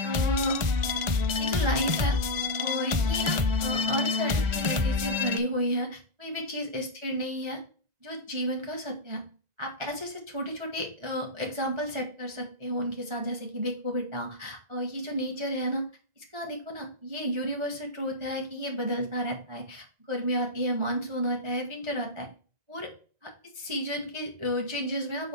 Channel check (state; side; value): late; left; 2.0 ms